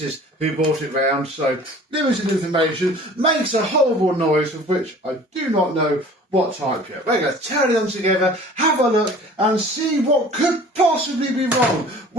who brought it round, so limited information. Makes a horrible noise of which I do not know what type yet. We're going to turn them together, have a look and see what could possibly be wrong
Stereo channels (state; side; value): normal; both; correlation 0.46